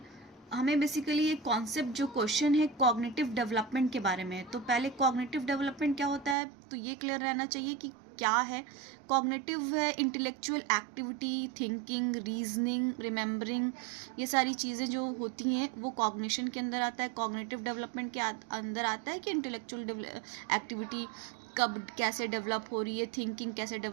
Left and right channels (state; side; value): drops out; left; at 6.4 s